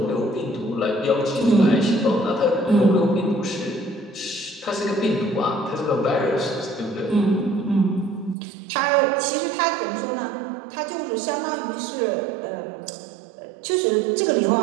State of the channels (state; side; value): drops out; left; at 8.3 s